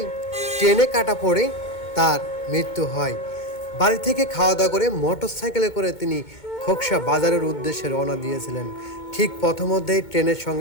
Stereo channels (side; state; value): right; late; 2.2 ms